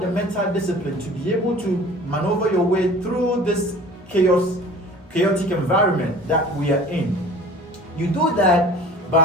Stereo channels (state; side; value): normal; both; correlation 0.44